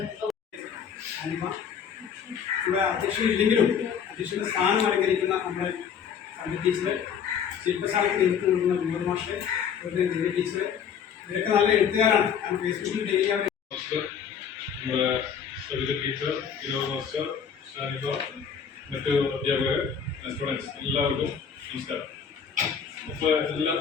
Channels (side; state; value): right; quieter; 7.4 dB